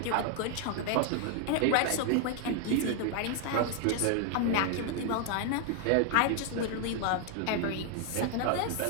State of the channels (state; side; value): different; both; correlation 0.00